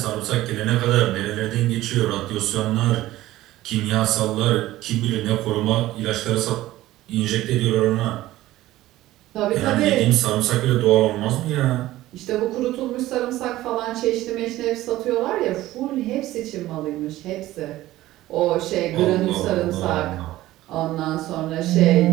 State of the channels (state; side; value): quieter; left; 15.9 dB